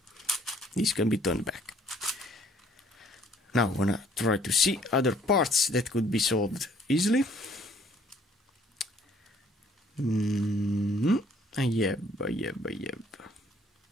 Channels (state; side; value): normal; both; correlation 0.61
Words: this can be turned back. Now I wanna try to see other parts that could be solved easily. I have.